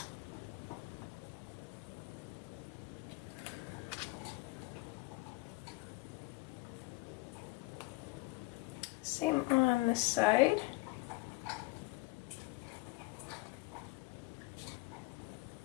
Same on this side.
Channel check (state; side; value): quieter; right; 22.7 dB